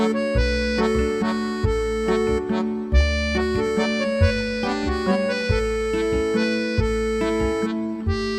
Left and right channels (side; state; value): both; identical; correlation 1.00